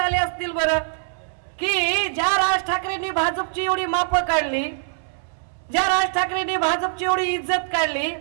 असतील बरं, की ज्या राज ठाकरेंनी भाजपची एवढी मापं काढली, ज्या राज ठाकरेंनी भाजपची एवढी इज्जत काढली.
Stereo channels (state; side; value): silent; left; 63 dB below the other